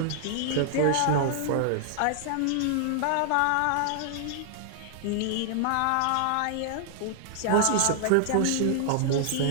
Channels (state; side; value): different; both; correlation -0.01